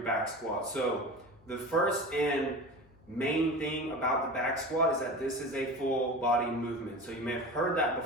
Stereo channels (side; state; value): left; noise; hum, 28 dB below the sound